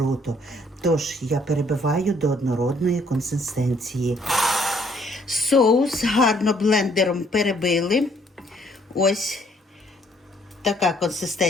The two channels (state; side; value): normal; both; correlation 0.65